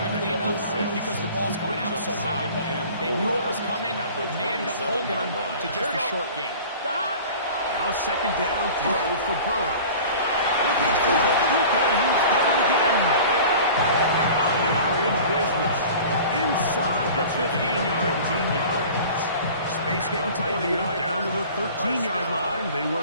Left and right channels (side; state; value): both; inverted; correlation -0.42